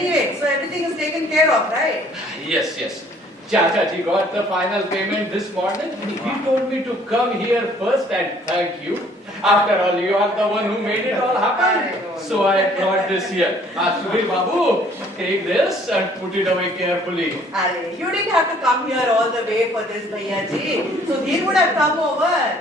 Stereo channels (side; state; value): both; normal; correlation 0.58